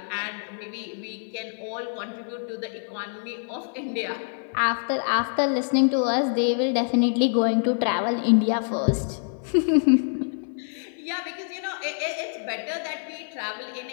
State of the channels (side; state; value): right; silent; digital silence